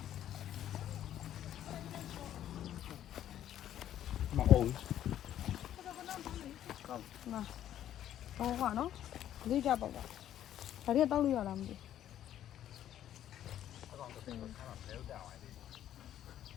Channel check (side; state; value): right; quieter; 11.3 dB